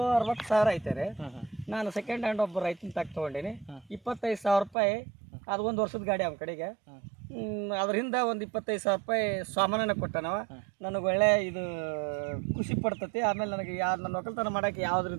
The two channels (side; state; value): left; drops out; at 4.8 s